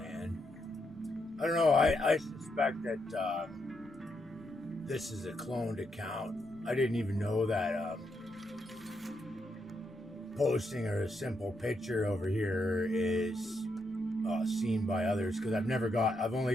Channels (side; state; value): both; normal; correlation 0.80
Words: I don't know. I suspect that this is a cloned account. I didn't even know that posting a simple picture over here is seen by others, because I've